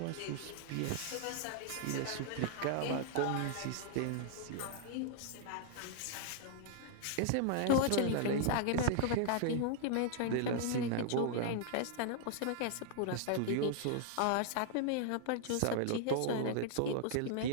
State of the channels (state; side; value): different; both; correlation -0.01